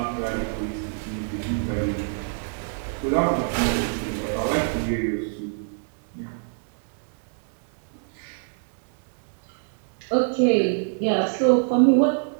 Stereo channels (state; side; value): silent; left; digital silence